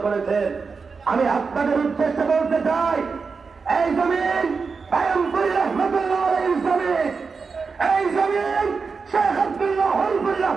করেছেন, আমি আপনাদের উদ্দেশ্যে বলতে চাই, এই জমিন পায়মপুর রহমতুল্লাহ আলাইহির জমিন, এই জমিন শেখ আব্দুল্লাহ হলফুর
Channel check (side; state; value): left; quieter; 4.9 dB